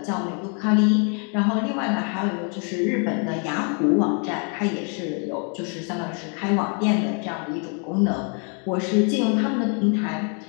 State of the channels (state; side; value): quieter; right; 38.7 dB